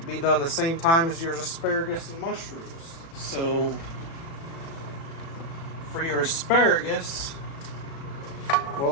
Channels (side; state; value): right; late; 36 ms